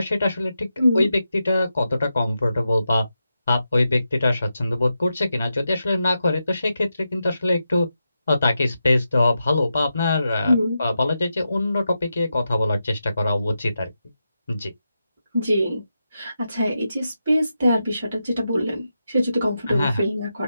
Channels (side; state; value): both; inverted; correlation -0.88